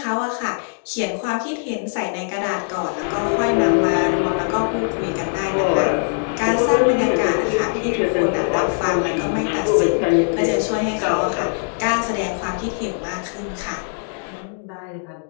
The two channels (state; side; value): silent; right; digital silence